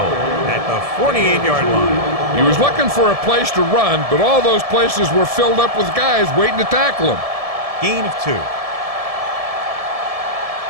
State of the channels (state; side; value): late; left; 1.7 ms